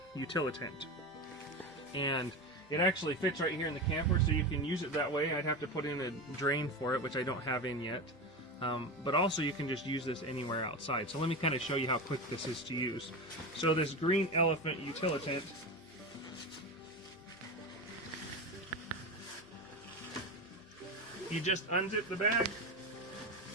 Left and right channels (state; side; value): noise; left; hum, 29 dB below the sound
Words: utilitant. And it actually fits right here in the camper, so you can use it that way. I'd have to put in a drain for it, which I don't have in yet. But also you can just use this anywhere outside. So let me kind of show you how quick this is to use. So this green elephant utilitant, you just unzip the bag.